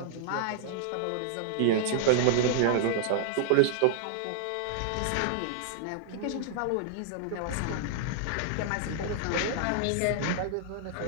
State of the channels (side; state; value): both; different; correlation -0.01